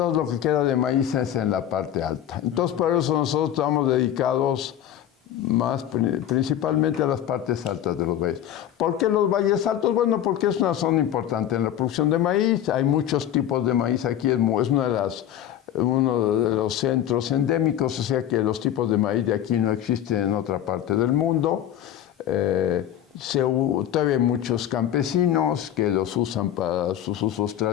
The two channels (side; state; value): right; quieter; 11.0 dB